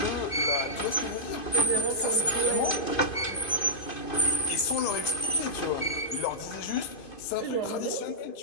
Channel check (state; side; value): late; right; 2.5 ms